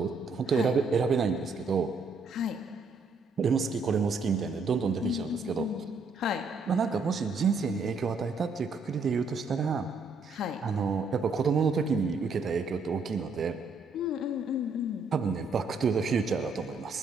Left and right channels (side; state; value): left; quieter; 3.8 dB